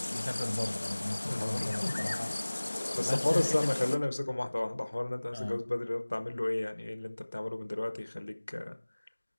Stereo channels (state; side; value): inverted; both; correlation -1.00